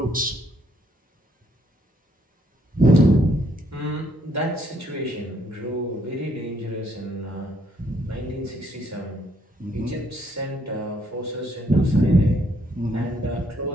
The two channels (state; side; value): normal; both; correlation 0.70